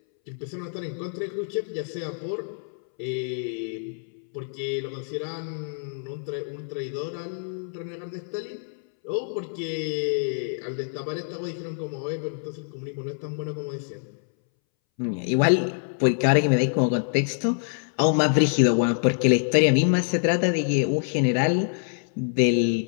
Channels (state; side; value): silent; right; 61 dB below the other